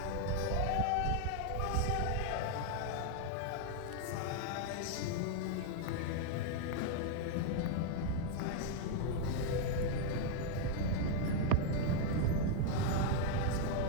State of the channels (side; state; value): both; different; correlation 0.00